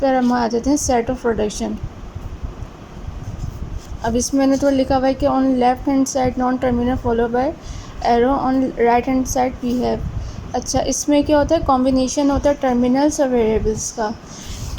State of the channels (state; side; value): identical; both; correlation 1.00